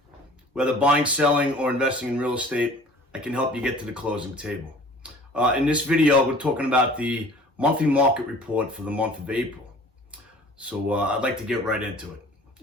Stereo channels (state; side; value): normal; both; correlation 0.47